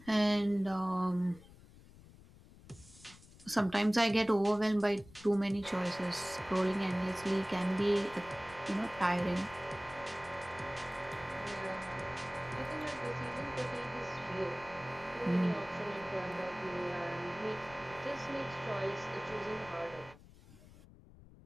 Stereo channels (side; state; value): left; noise; rumble, 21 dB below the sound